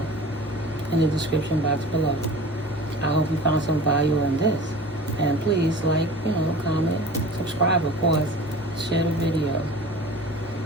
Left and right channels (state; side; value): normal; both; correlation 0.40